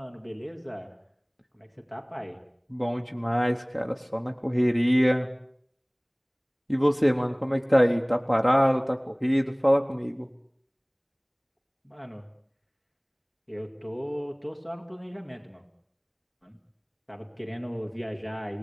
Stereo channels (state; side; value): identical; both; correlation 1.00